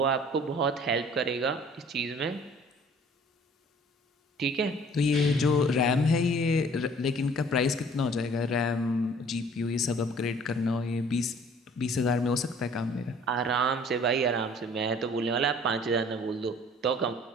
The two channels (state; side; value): normal; both; correlation 0.53